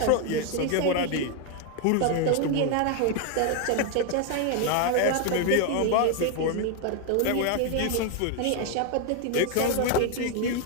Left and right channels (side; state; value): both; different; correlation 0.01